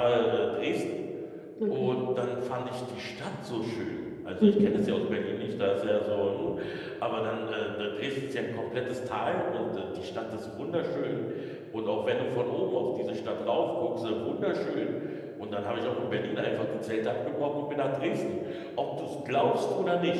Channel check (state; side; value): identical; both; correlation 1.00